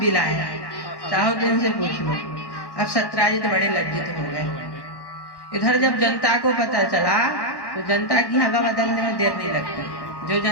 लाए हैं, चाहो तो इनसे पूछ लो। अब सत्यजित बड़े लज्जित हो गए। इधर जब जनता को पता चला तो जनता की हवा बदलने में देर नहीं लगती। जो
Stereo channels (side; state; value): right; late; 1.1 ms